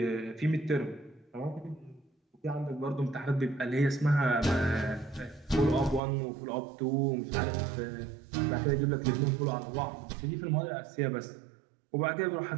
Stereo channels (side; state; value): left; drops out; at 6.0 s